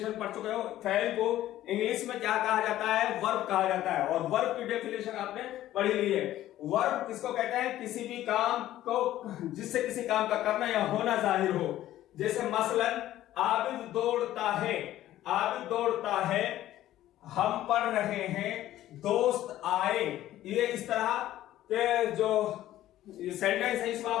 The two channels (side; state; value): right; quieter; 13.8 dB